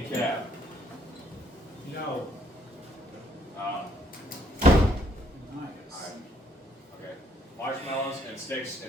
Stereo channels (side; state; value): both; normal; correlation 0.67